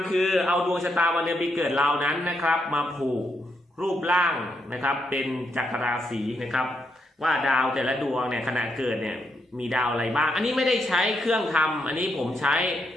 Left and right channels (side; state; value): both; normal; correlation 0.80